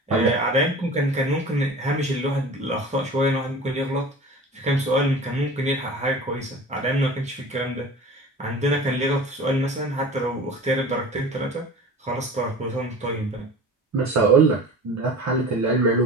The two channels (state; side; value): normal; both; correlation 0.39